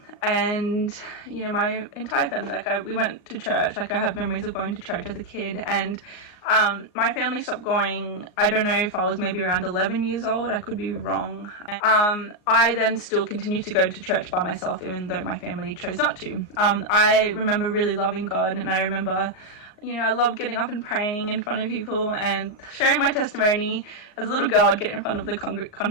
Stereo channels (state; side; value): late; right; 38 ms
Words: and you know, my entire family, we went to church. I have memories of going to church as a kid, and my family stopped going, I don't know if I was maybe around 11 years old, I could be wrong. I then still continued to go to church by myself, even though my family chose not to. I remember really loving God, and I remember, you know, I loved getting up and praying in front of people and sharing my testimony. As a little girl, I'd get in front of the